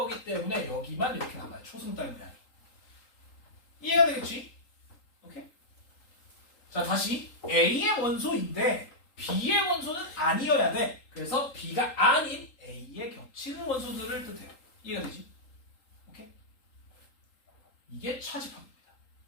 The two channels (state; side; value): late; right; 3.8 ms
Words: 때문에 여기만 이렇게 남아요. 초승 따위 모양. 이해가 되겠지? 오케이? 자, 다시 A의 원소인데 B의 원소는 아니어야 돼. 그래서 B가 아닌 A에 겹치는 원소들을 뜻해요. 이해가 되지? 오케이? 이게 차집합입니다.